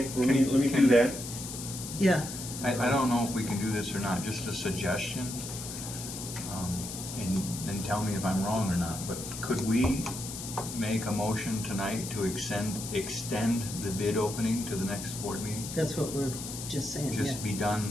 let me do that. yeah. I don't know if we can do this or not, just a suggestion. And tell me if I'm wrong or not, but could we make a motion tonight to extend the bid opening to the next board meeting? That's what we're just saying, yeah. Just be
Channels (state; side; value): noise; left; hiss, 8 dB below the sound